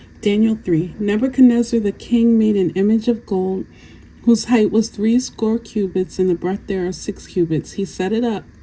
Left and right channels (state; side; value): identical; both; correlation 1.00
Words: Daniel 3. Nebuchadnezzar the king made an image of gold, whose height was 60 cubits, and the breadth thereof 6 cubits. He set it up